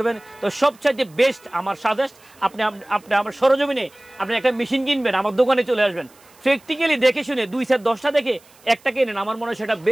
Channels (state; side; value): noise; right; hiss, 28 dB below the sound